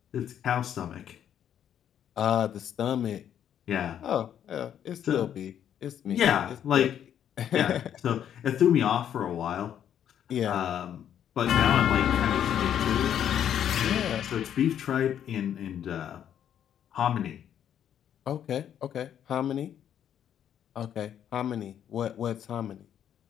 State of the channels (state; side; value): quieter; right; 9.7 dB